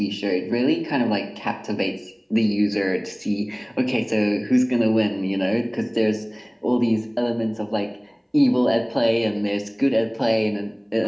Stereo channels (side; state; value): both; identical; correlation 1.00